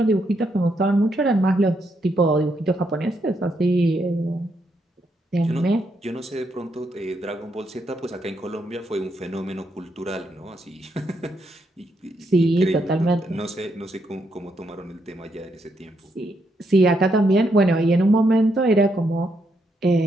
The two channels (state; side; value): normal; both; correlation 0.78